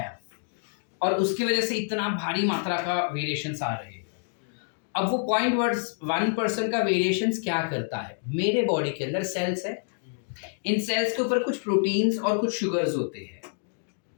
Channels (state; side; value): silent; right; digital silence